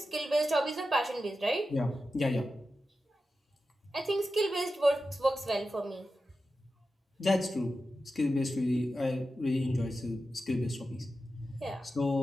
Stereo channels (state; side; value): normal; both; correlation 0.91